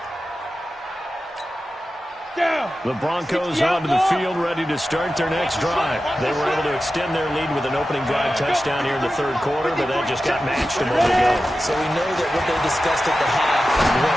The Broncos onto the field, ready to start their next drive. They were able to extend their lead with an opening drive touchdown here in the third quarter, but that just got matched a moment ago. So we know that what they discussed at the half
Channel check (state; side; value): normal; both; correlation 0.93